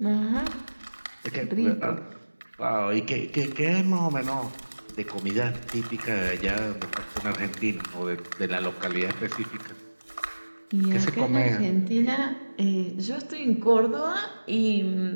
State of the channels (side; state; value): both; inverted; correlation -1.00